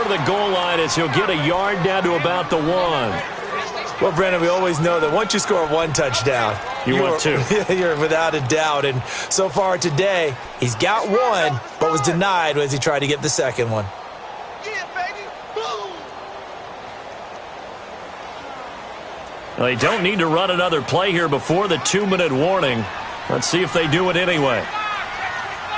of the goal line as he'll get a yard down to about the 1. Well, Brandon, we always know that once you score 1 touchdown, you want 2. You're without a doubt. And so far today, he's got 1, but was denied as he tried to get the second one. Well, they don't need to run another play here before the 2-minute warning. Let's see if they do it anyway.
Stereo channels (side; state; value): both; identical; correlation 1.00